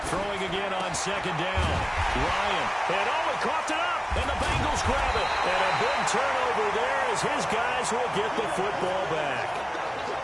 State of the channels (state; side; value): identical; both; correlation 1.00